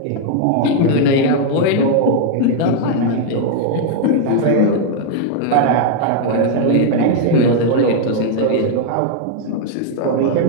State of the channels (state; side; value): different; both; correlation 0.00